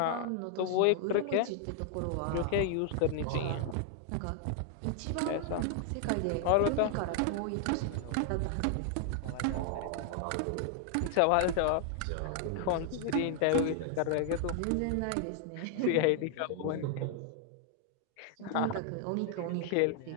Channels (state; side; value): different; both; correlation 0.00